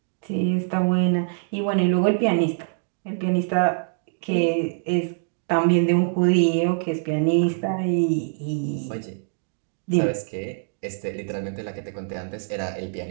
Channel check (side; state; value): left; silent; digital silence